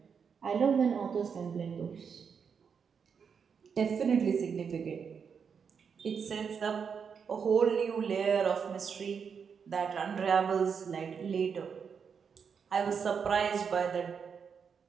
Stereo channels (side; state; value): left; quieter; 6.5 dB